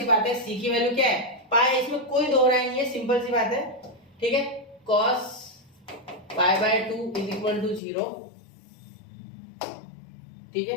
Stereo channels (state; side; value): drops out; right; at 7.8 s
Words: बात है, c की वैल्यू क्या है पाई, इसमें कोई दोहराई नहीं है, सिंपल सी बात है, ठीक है। cos pi by 2 is equal to 0, ठीक